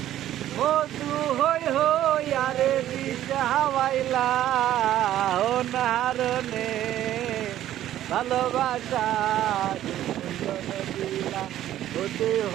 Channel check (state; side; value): quieter; left; 12.6 dB